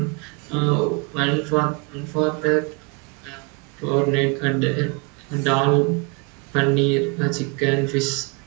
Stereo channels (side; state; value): left; quieter; 32.0 dB